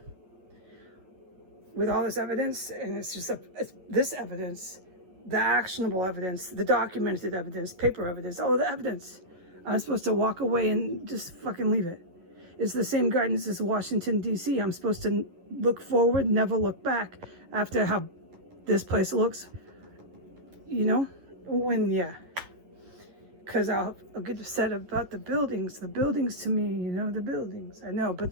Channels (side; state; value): left; late; 11 ms